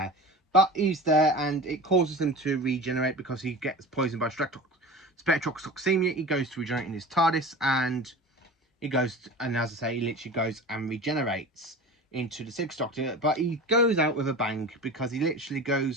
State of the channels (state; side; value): normal; both; correlation 0.34